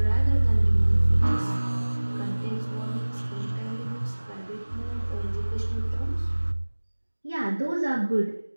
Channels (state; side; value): inverted; both; correlation -1.00